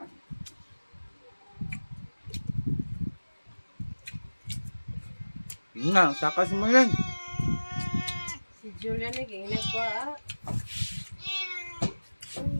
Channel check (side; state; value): both; inverted; correlation -1.00